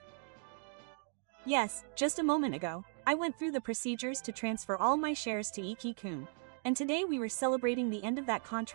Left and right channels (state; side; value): silent; left; 53 dB below the other